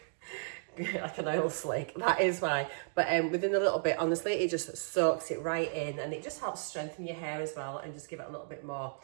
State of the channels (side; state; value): left; silent; digital silence